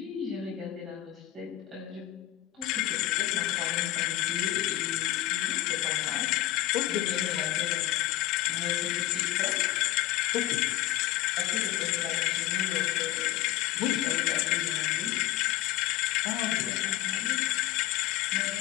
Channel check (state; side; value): quieter; right; 14.6 dB